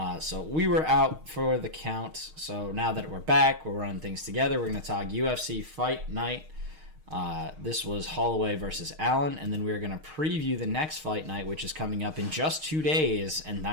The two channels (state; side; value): late; left; 6.4 ms